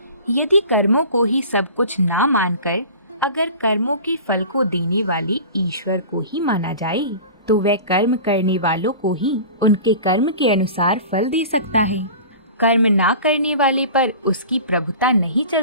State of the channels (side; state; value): both; inverted; correlation -0.38